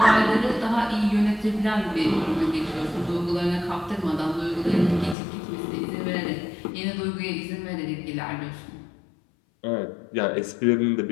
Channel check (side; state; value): right; drops out; at 5.2 s